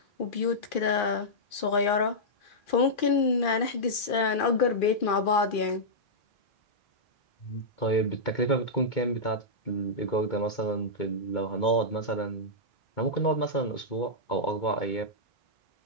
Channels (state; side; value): late; right; 2.4 ms